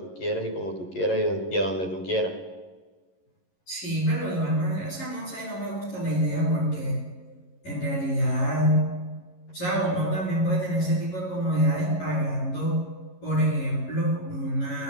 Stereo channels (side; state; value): right; late; 11 ms